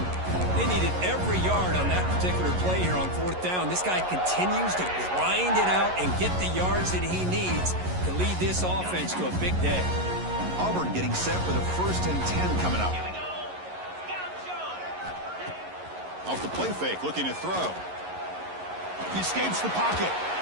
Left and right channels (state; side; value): late; left; 11 ms